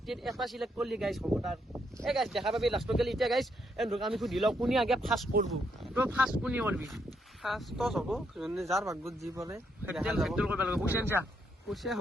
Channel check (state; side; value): normal; both; correlation 0.76